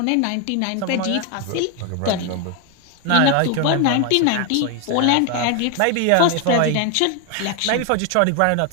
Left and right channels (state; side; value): different; both; correlation 0.01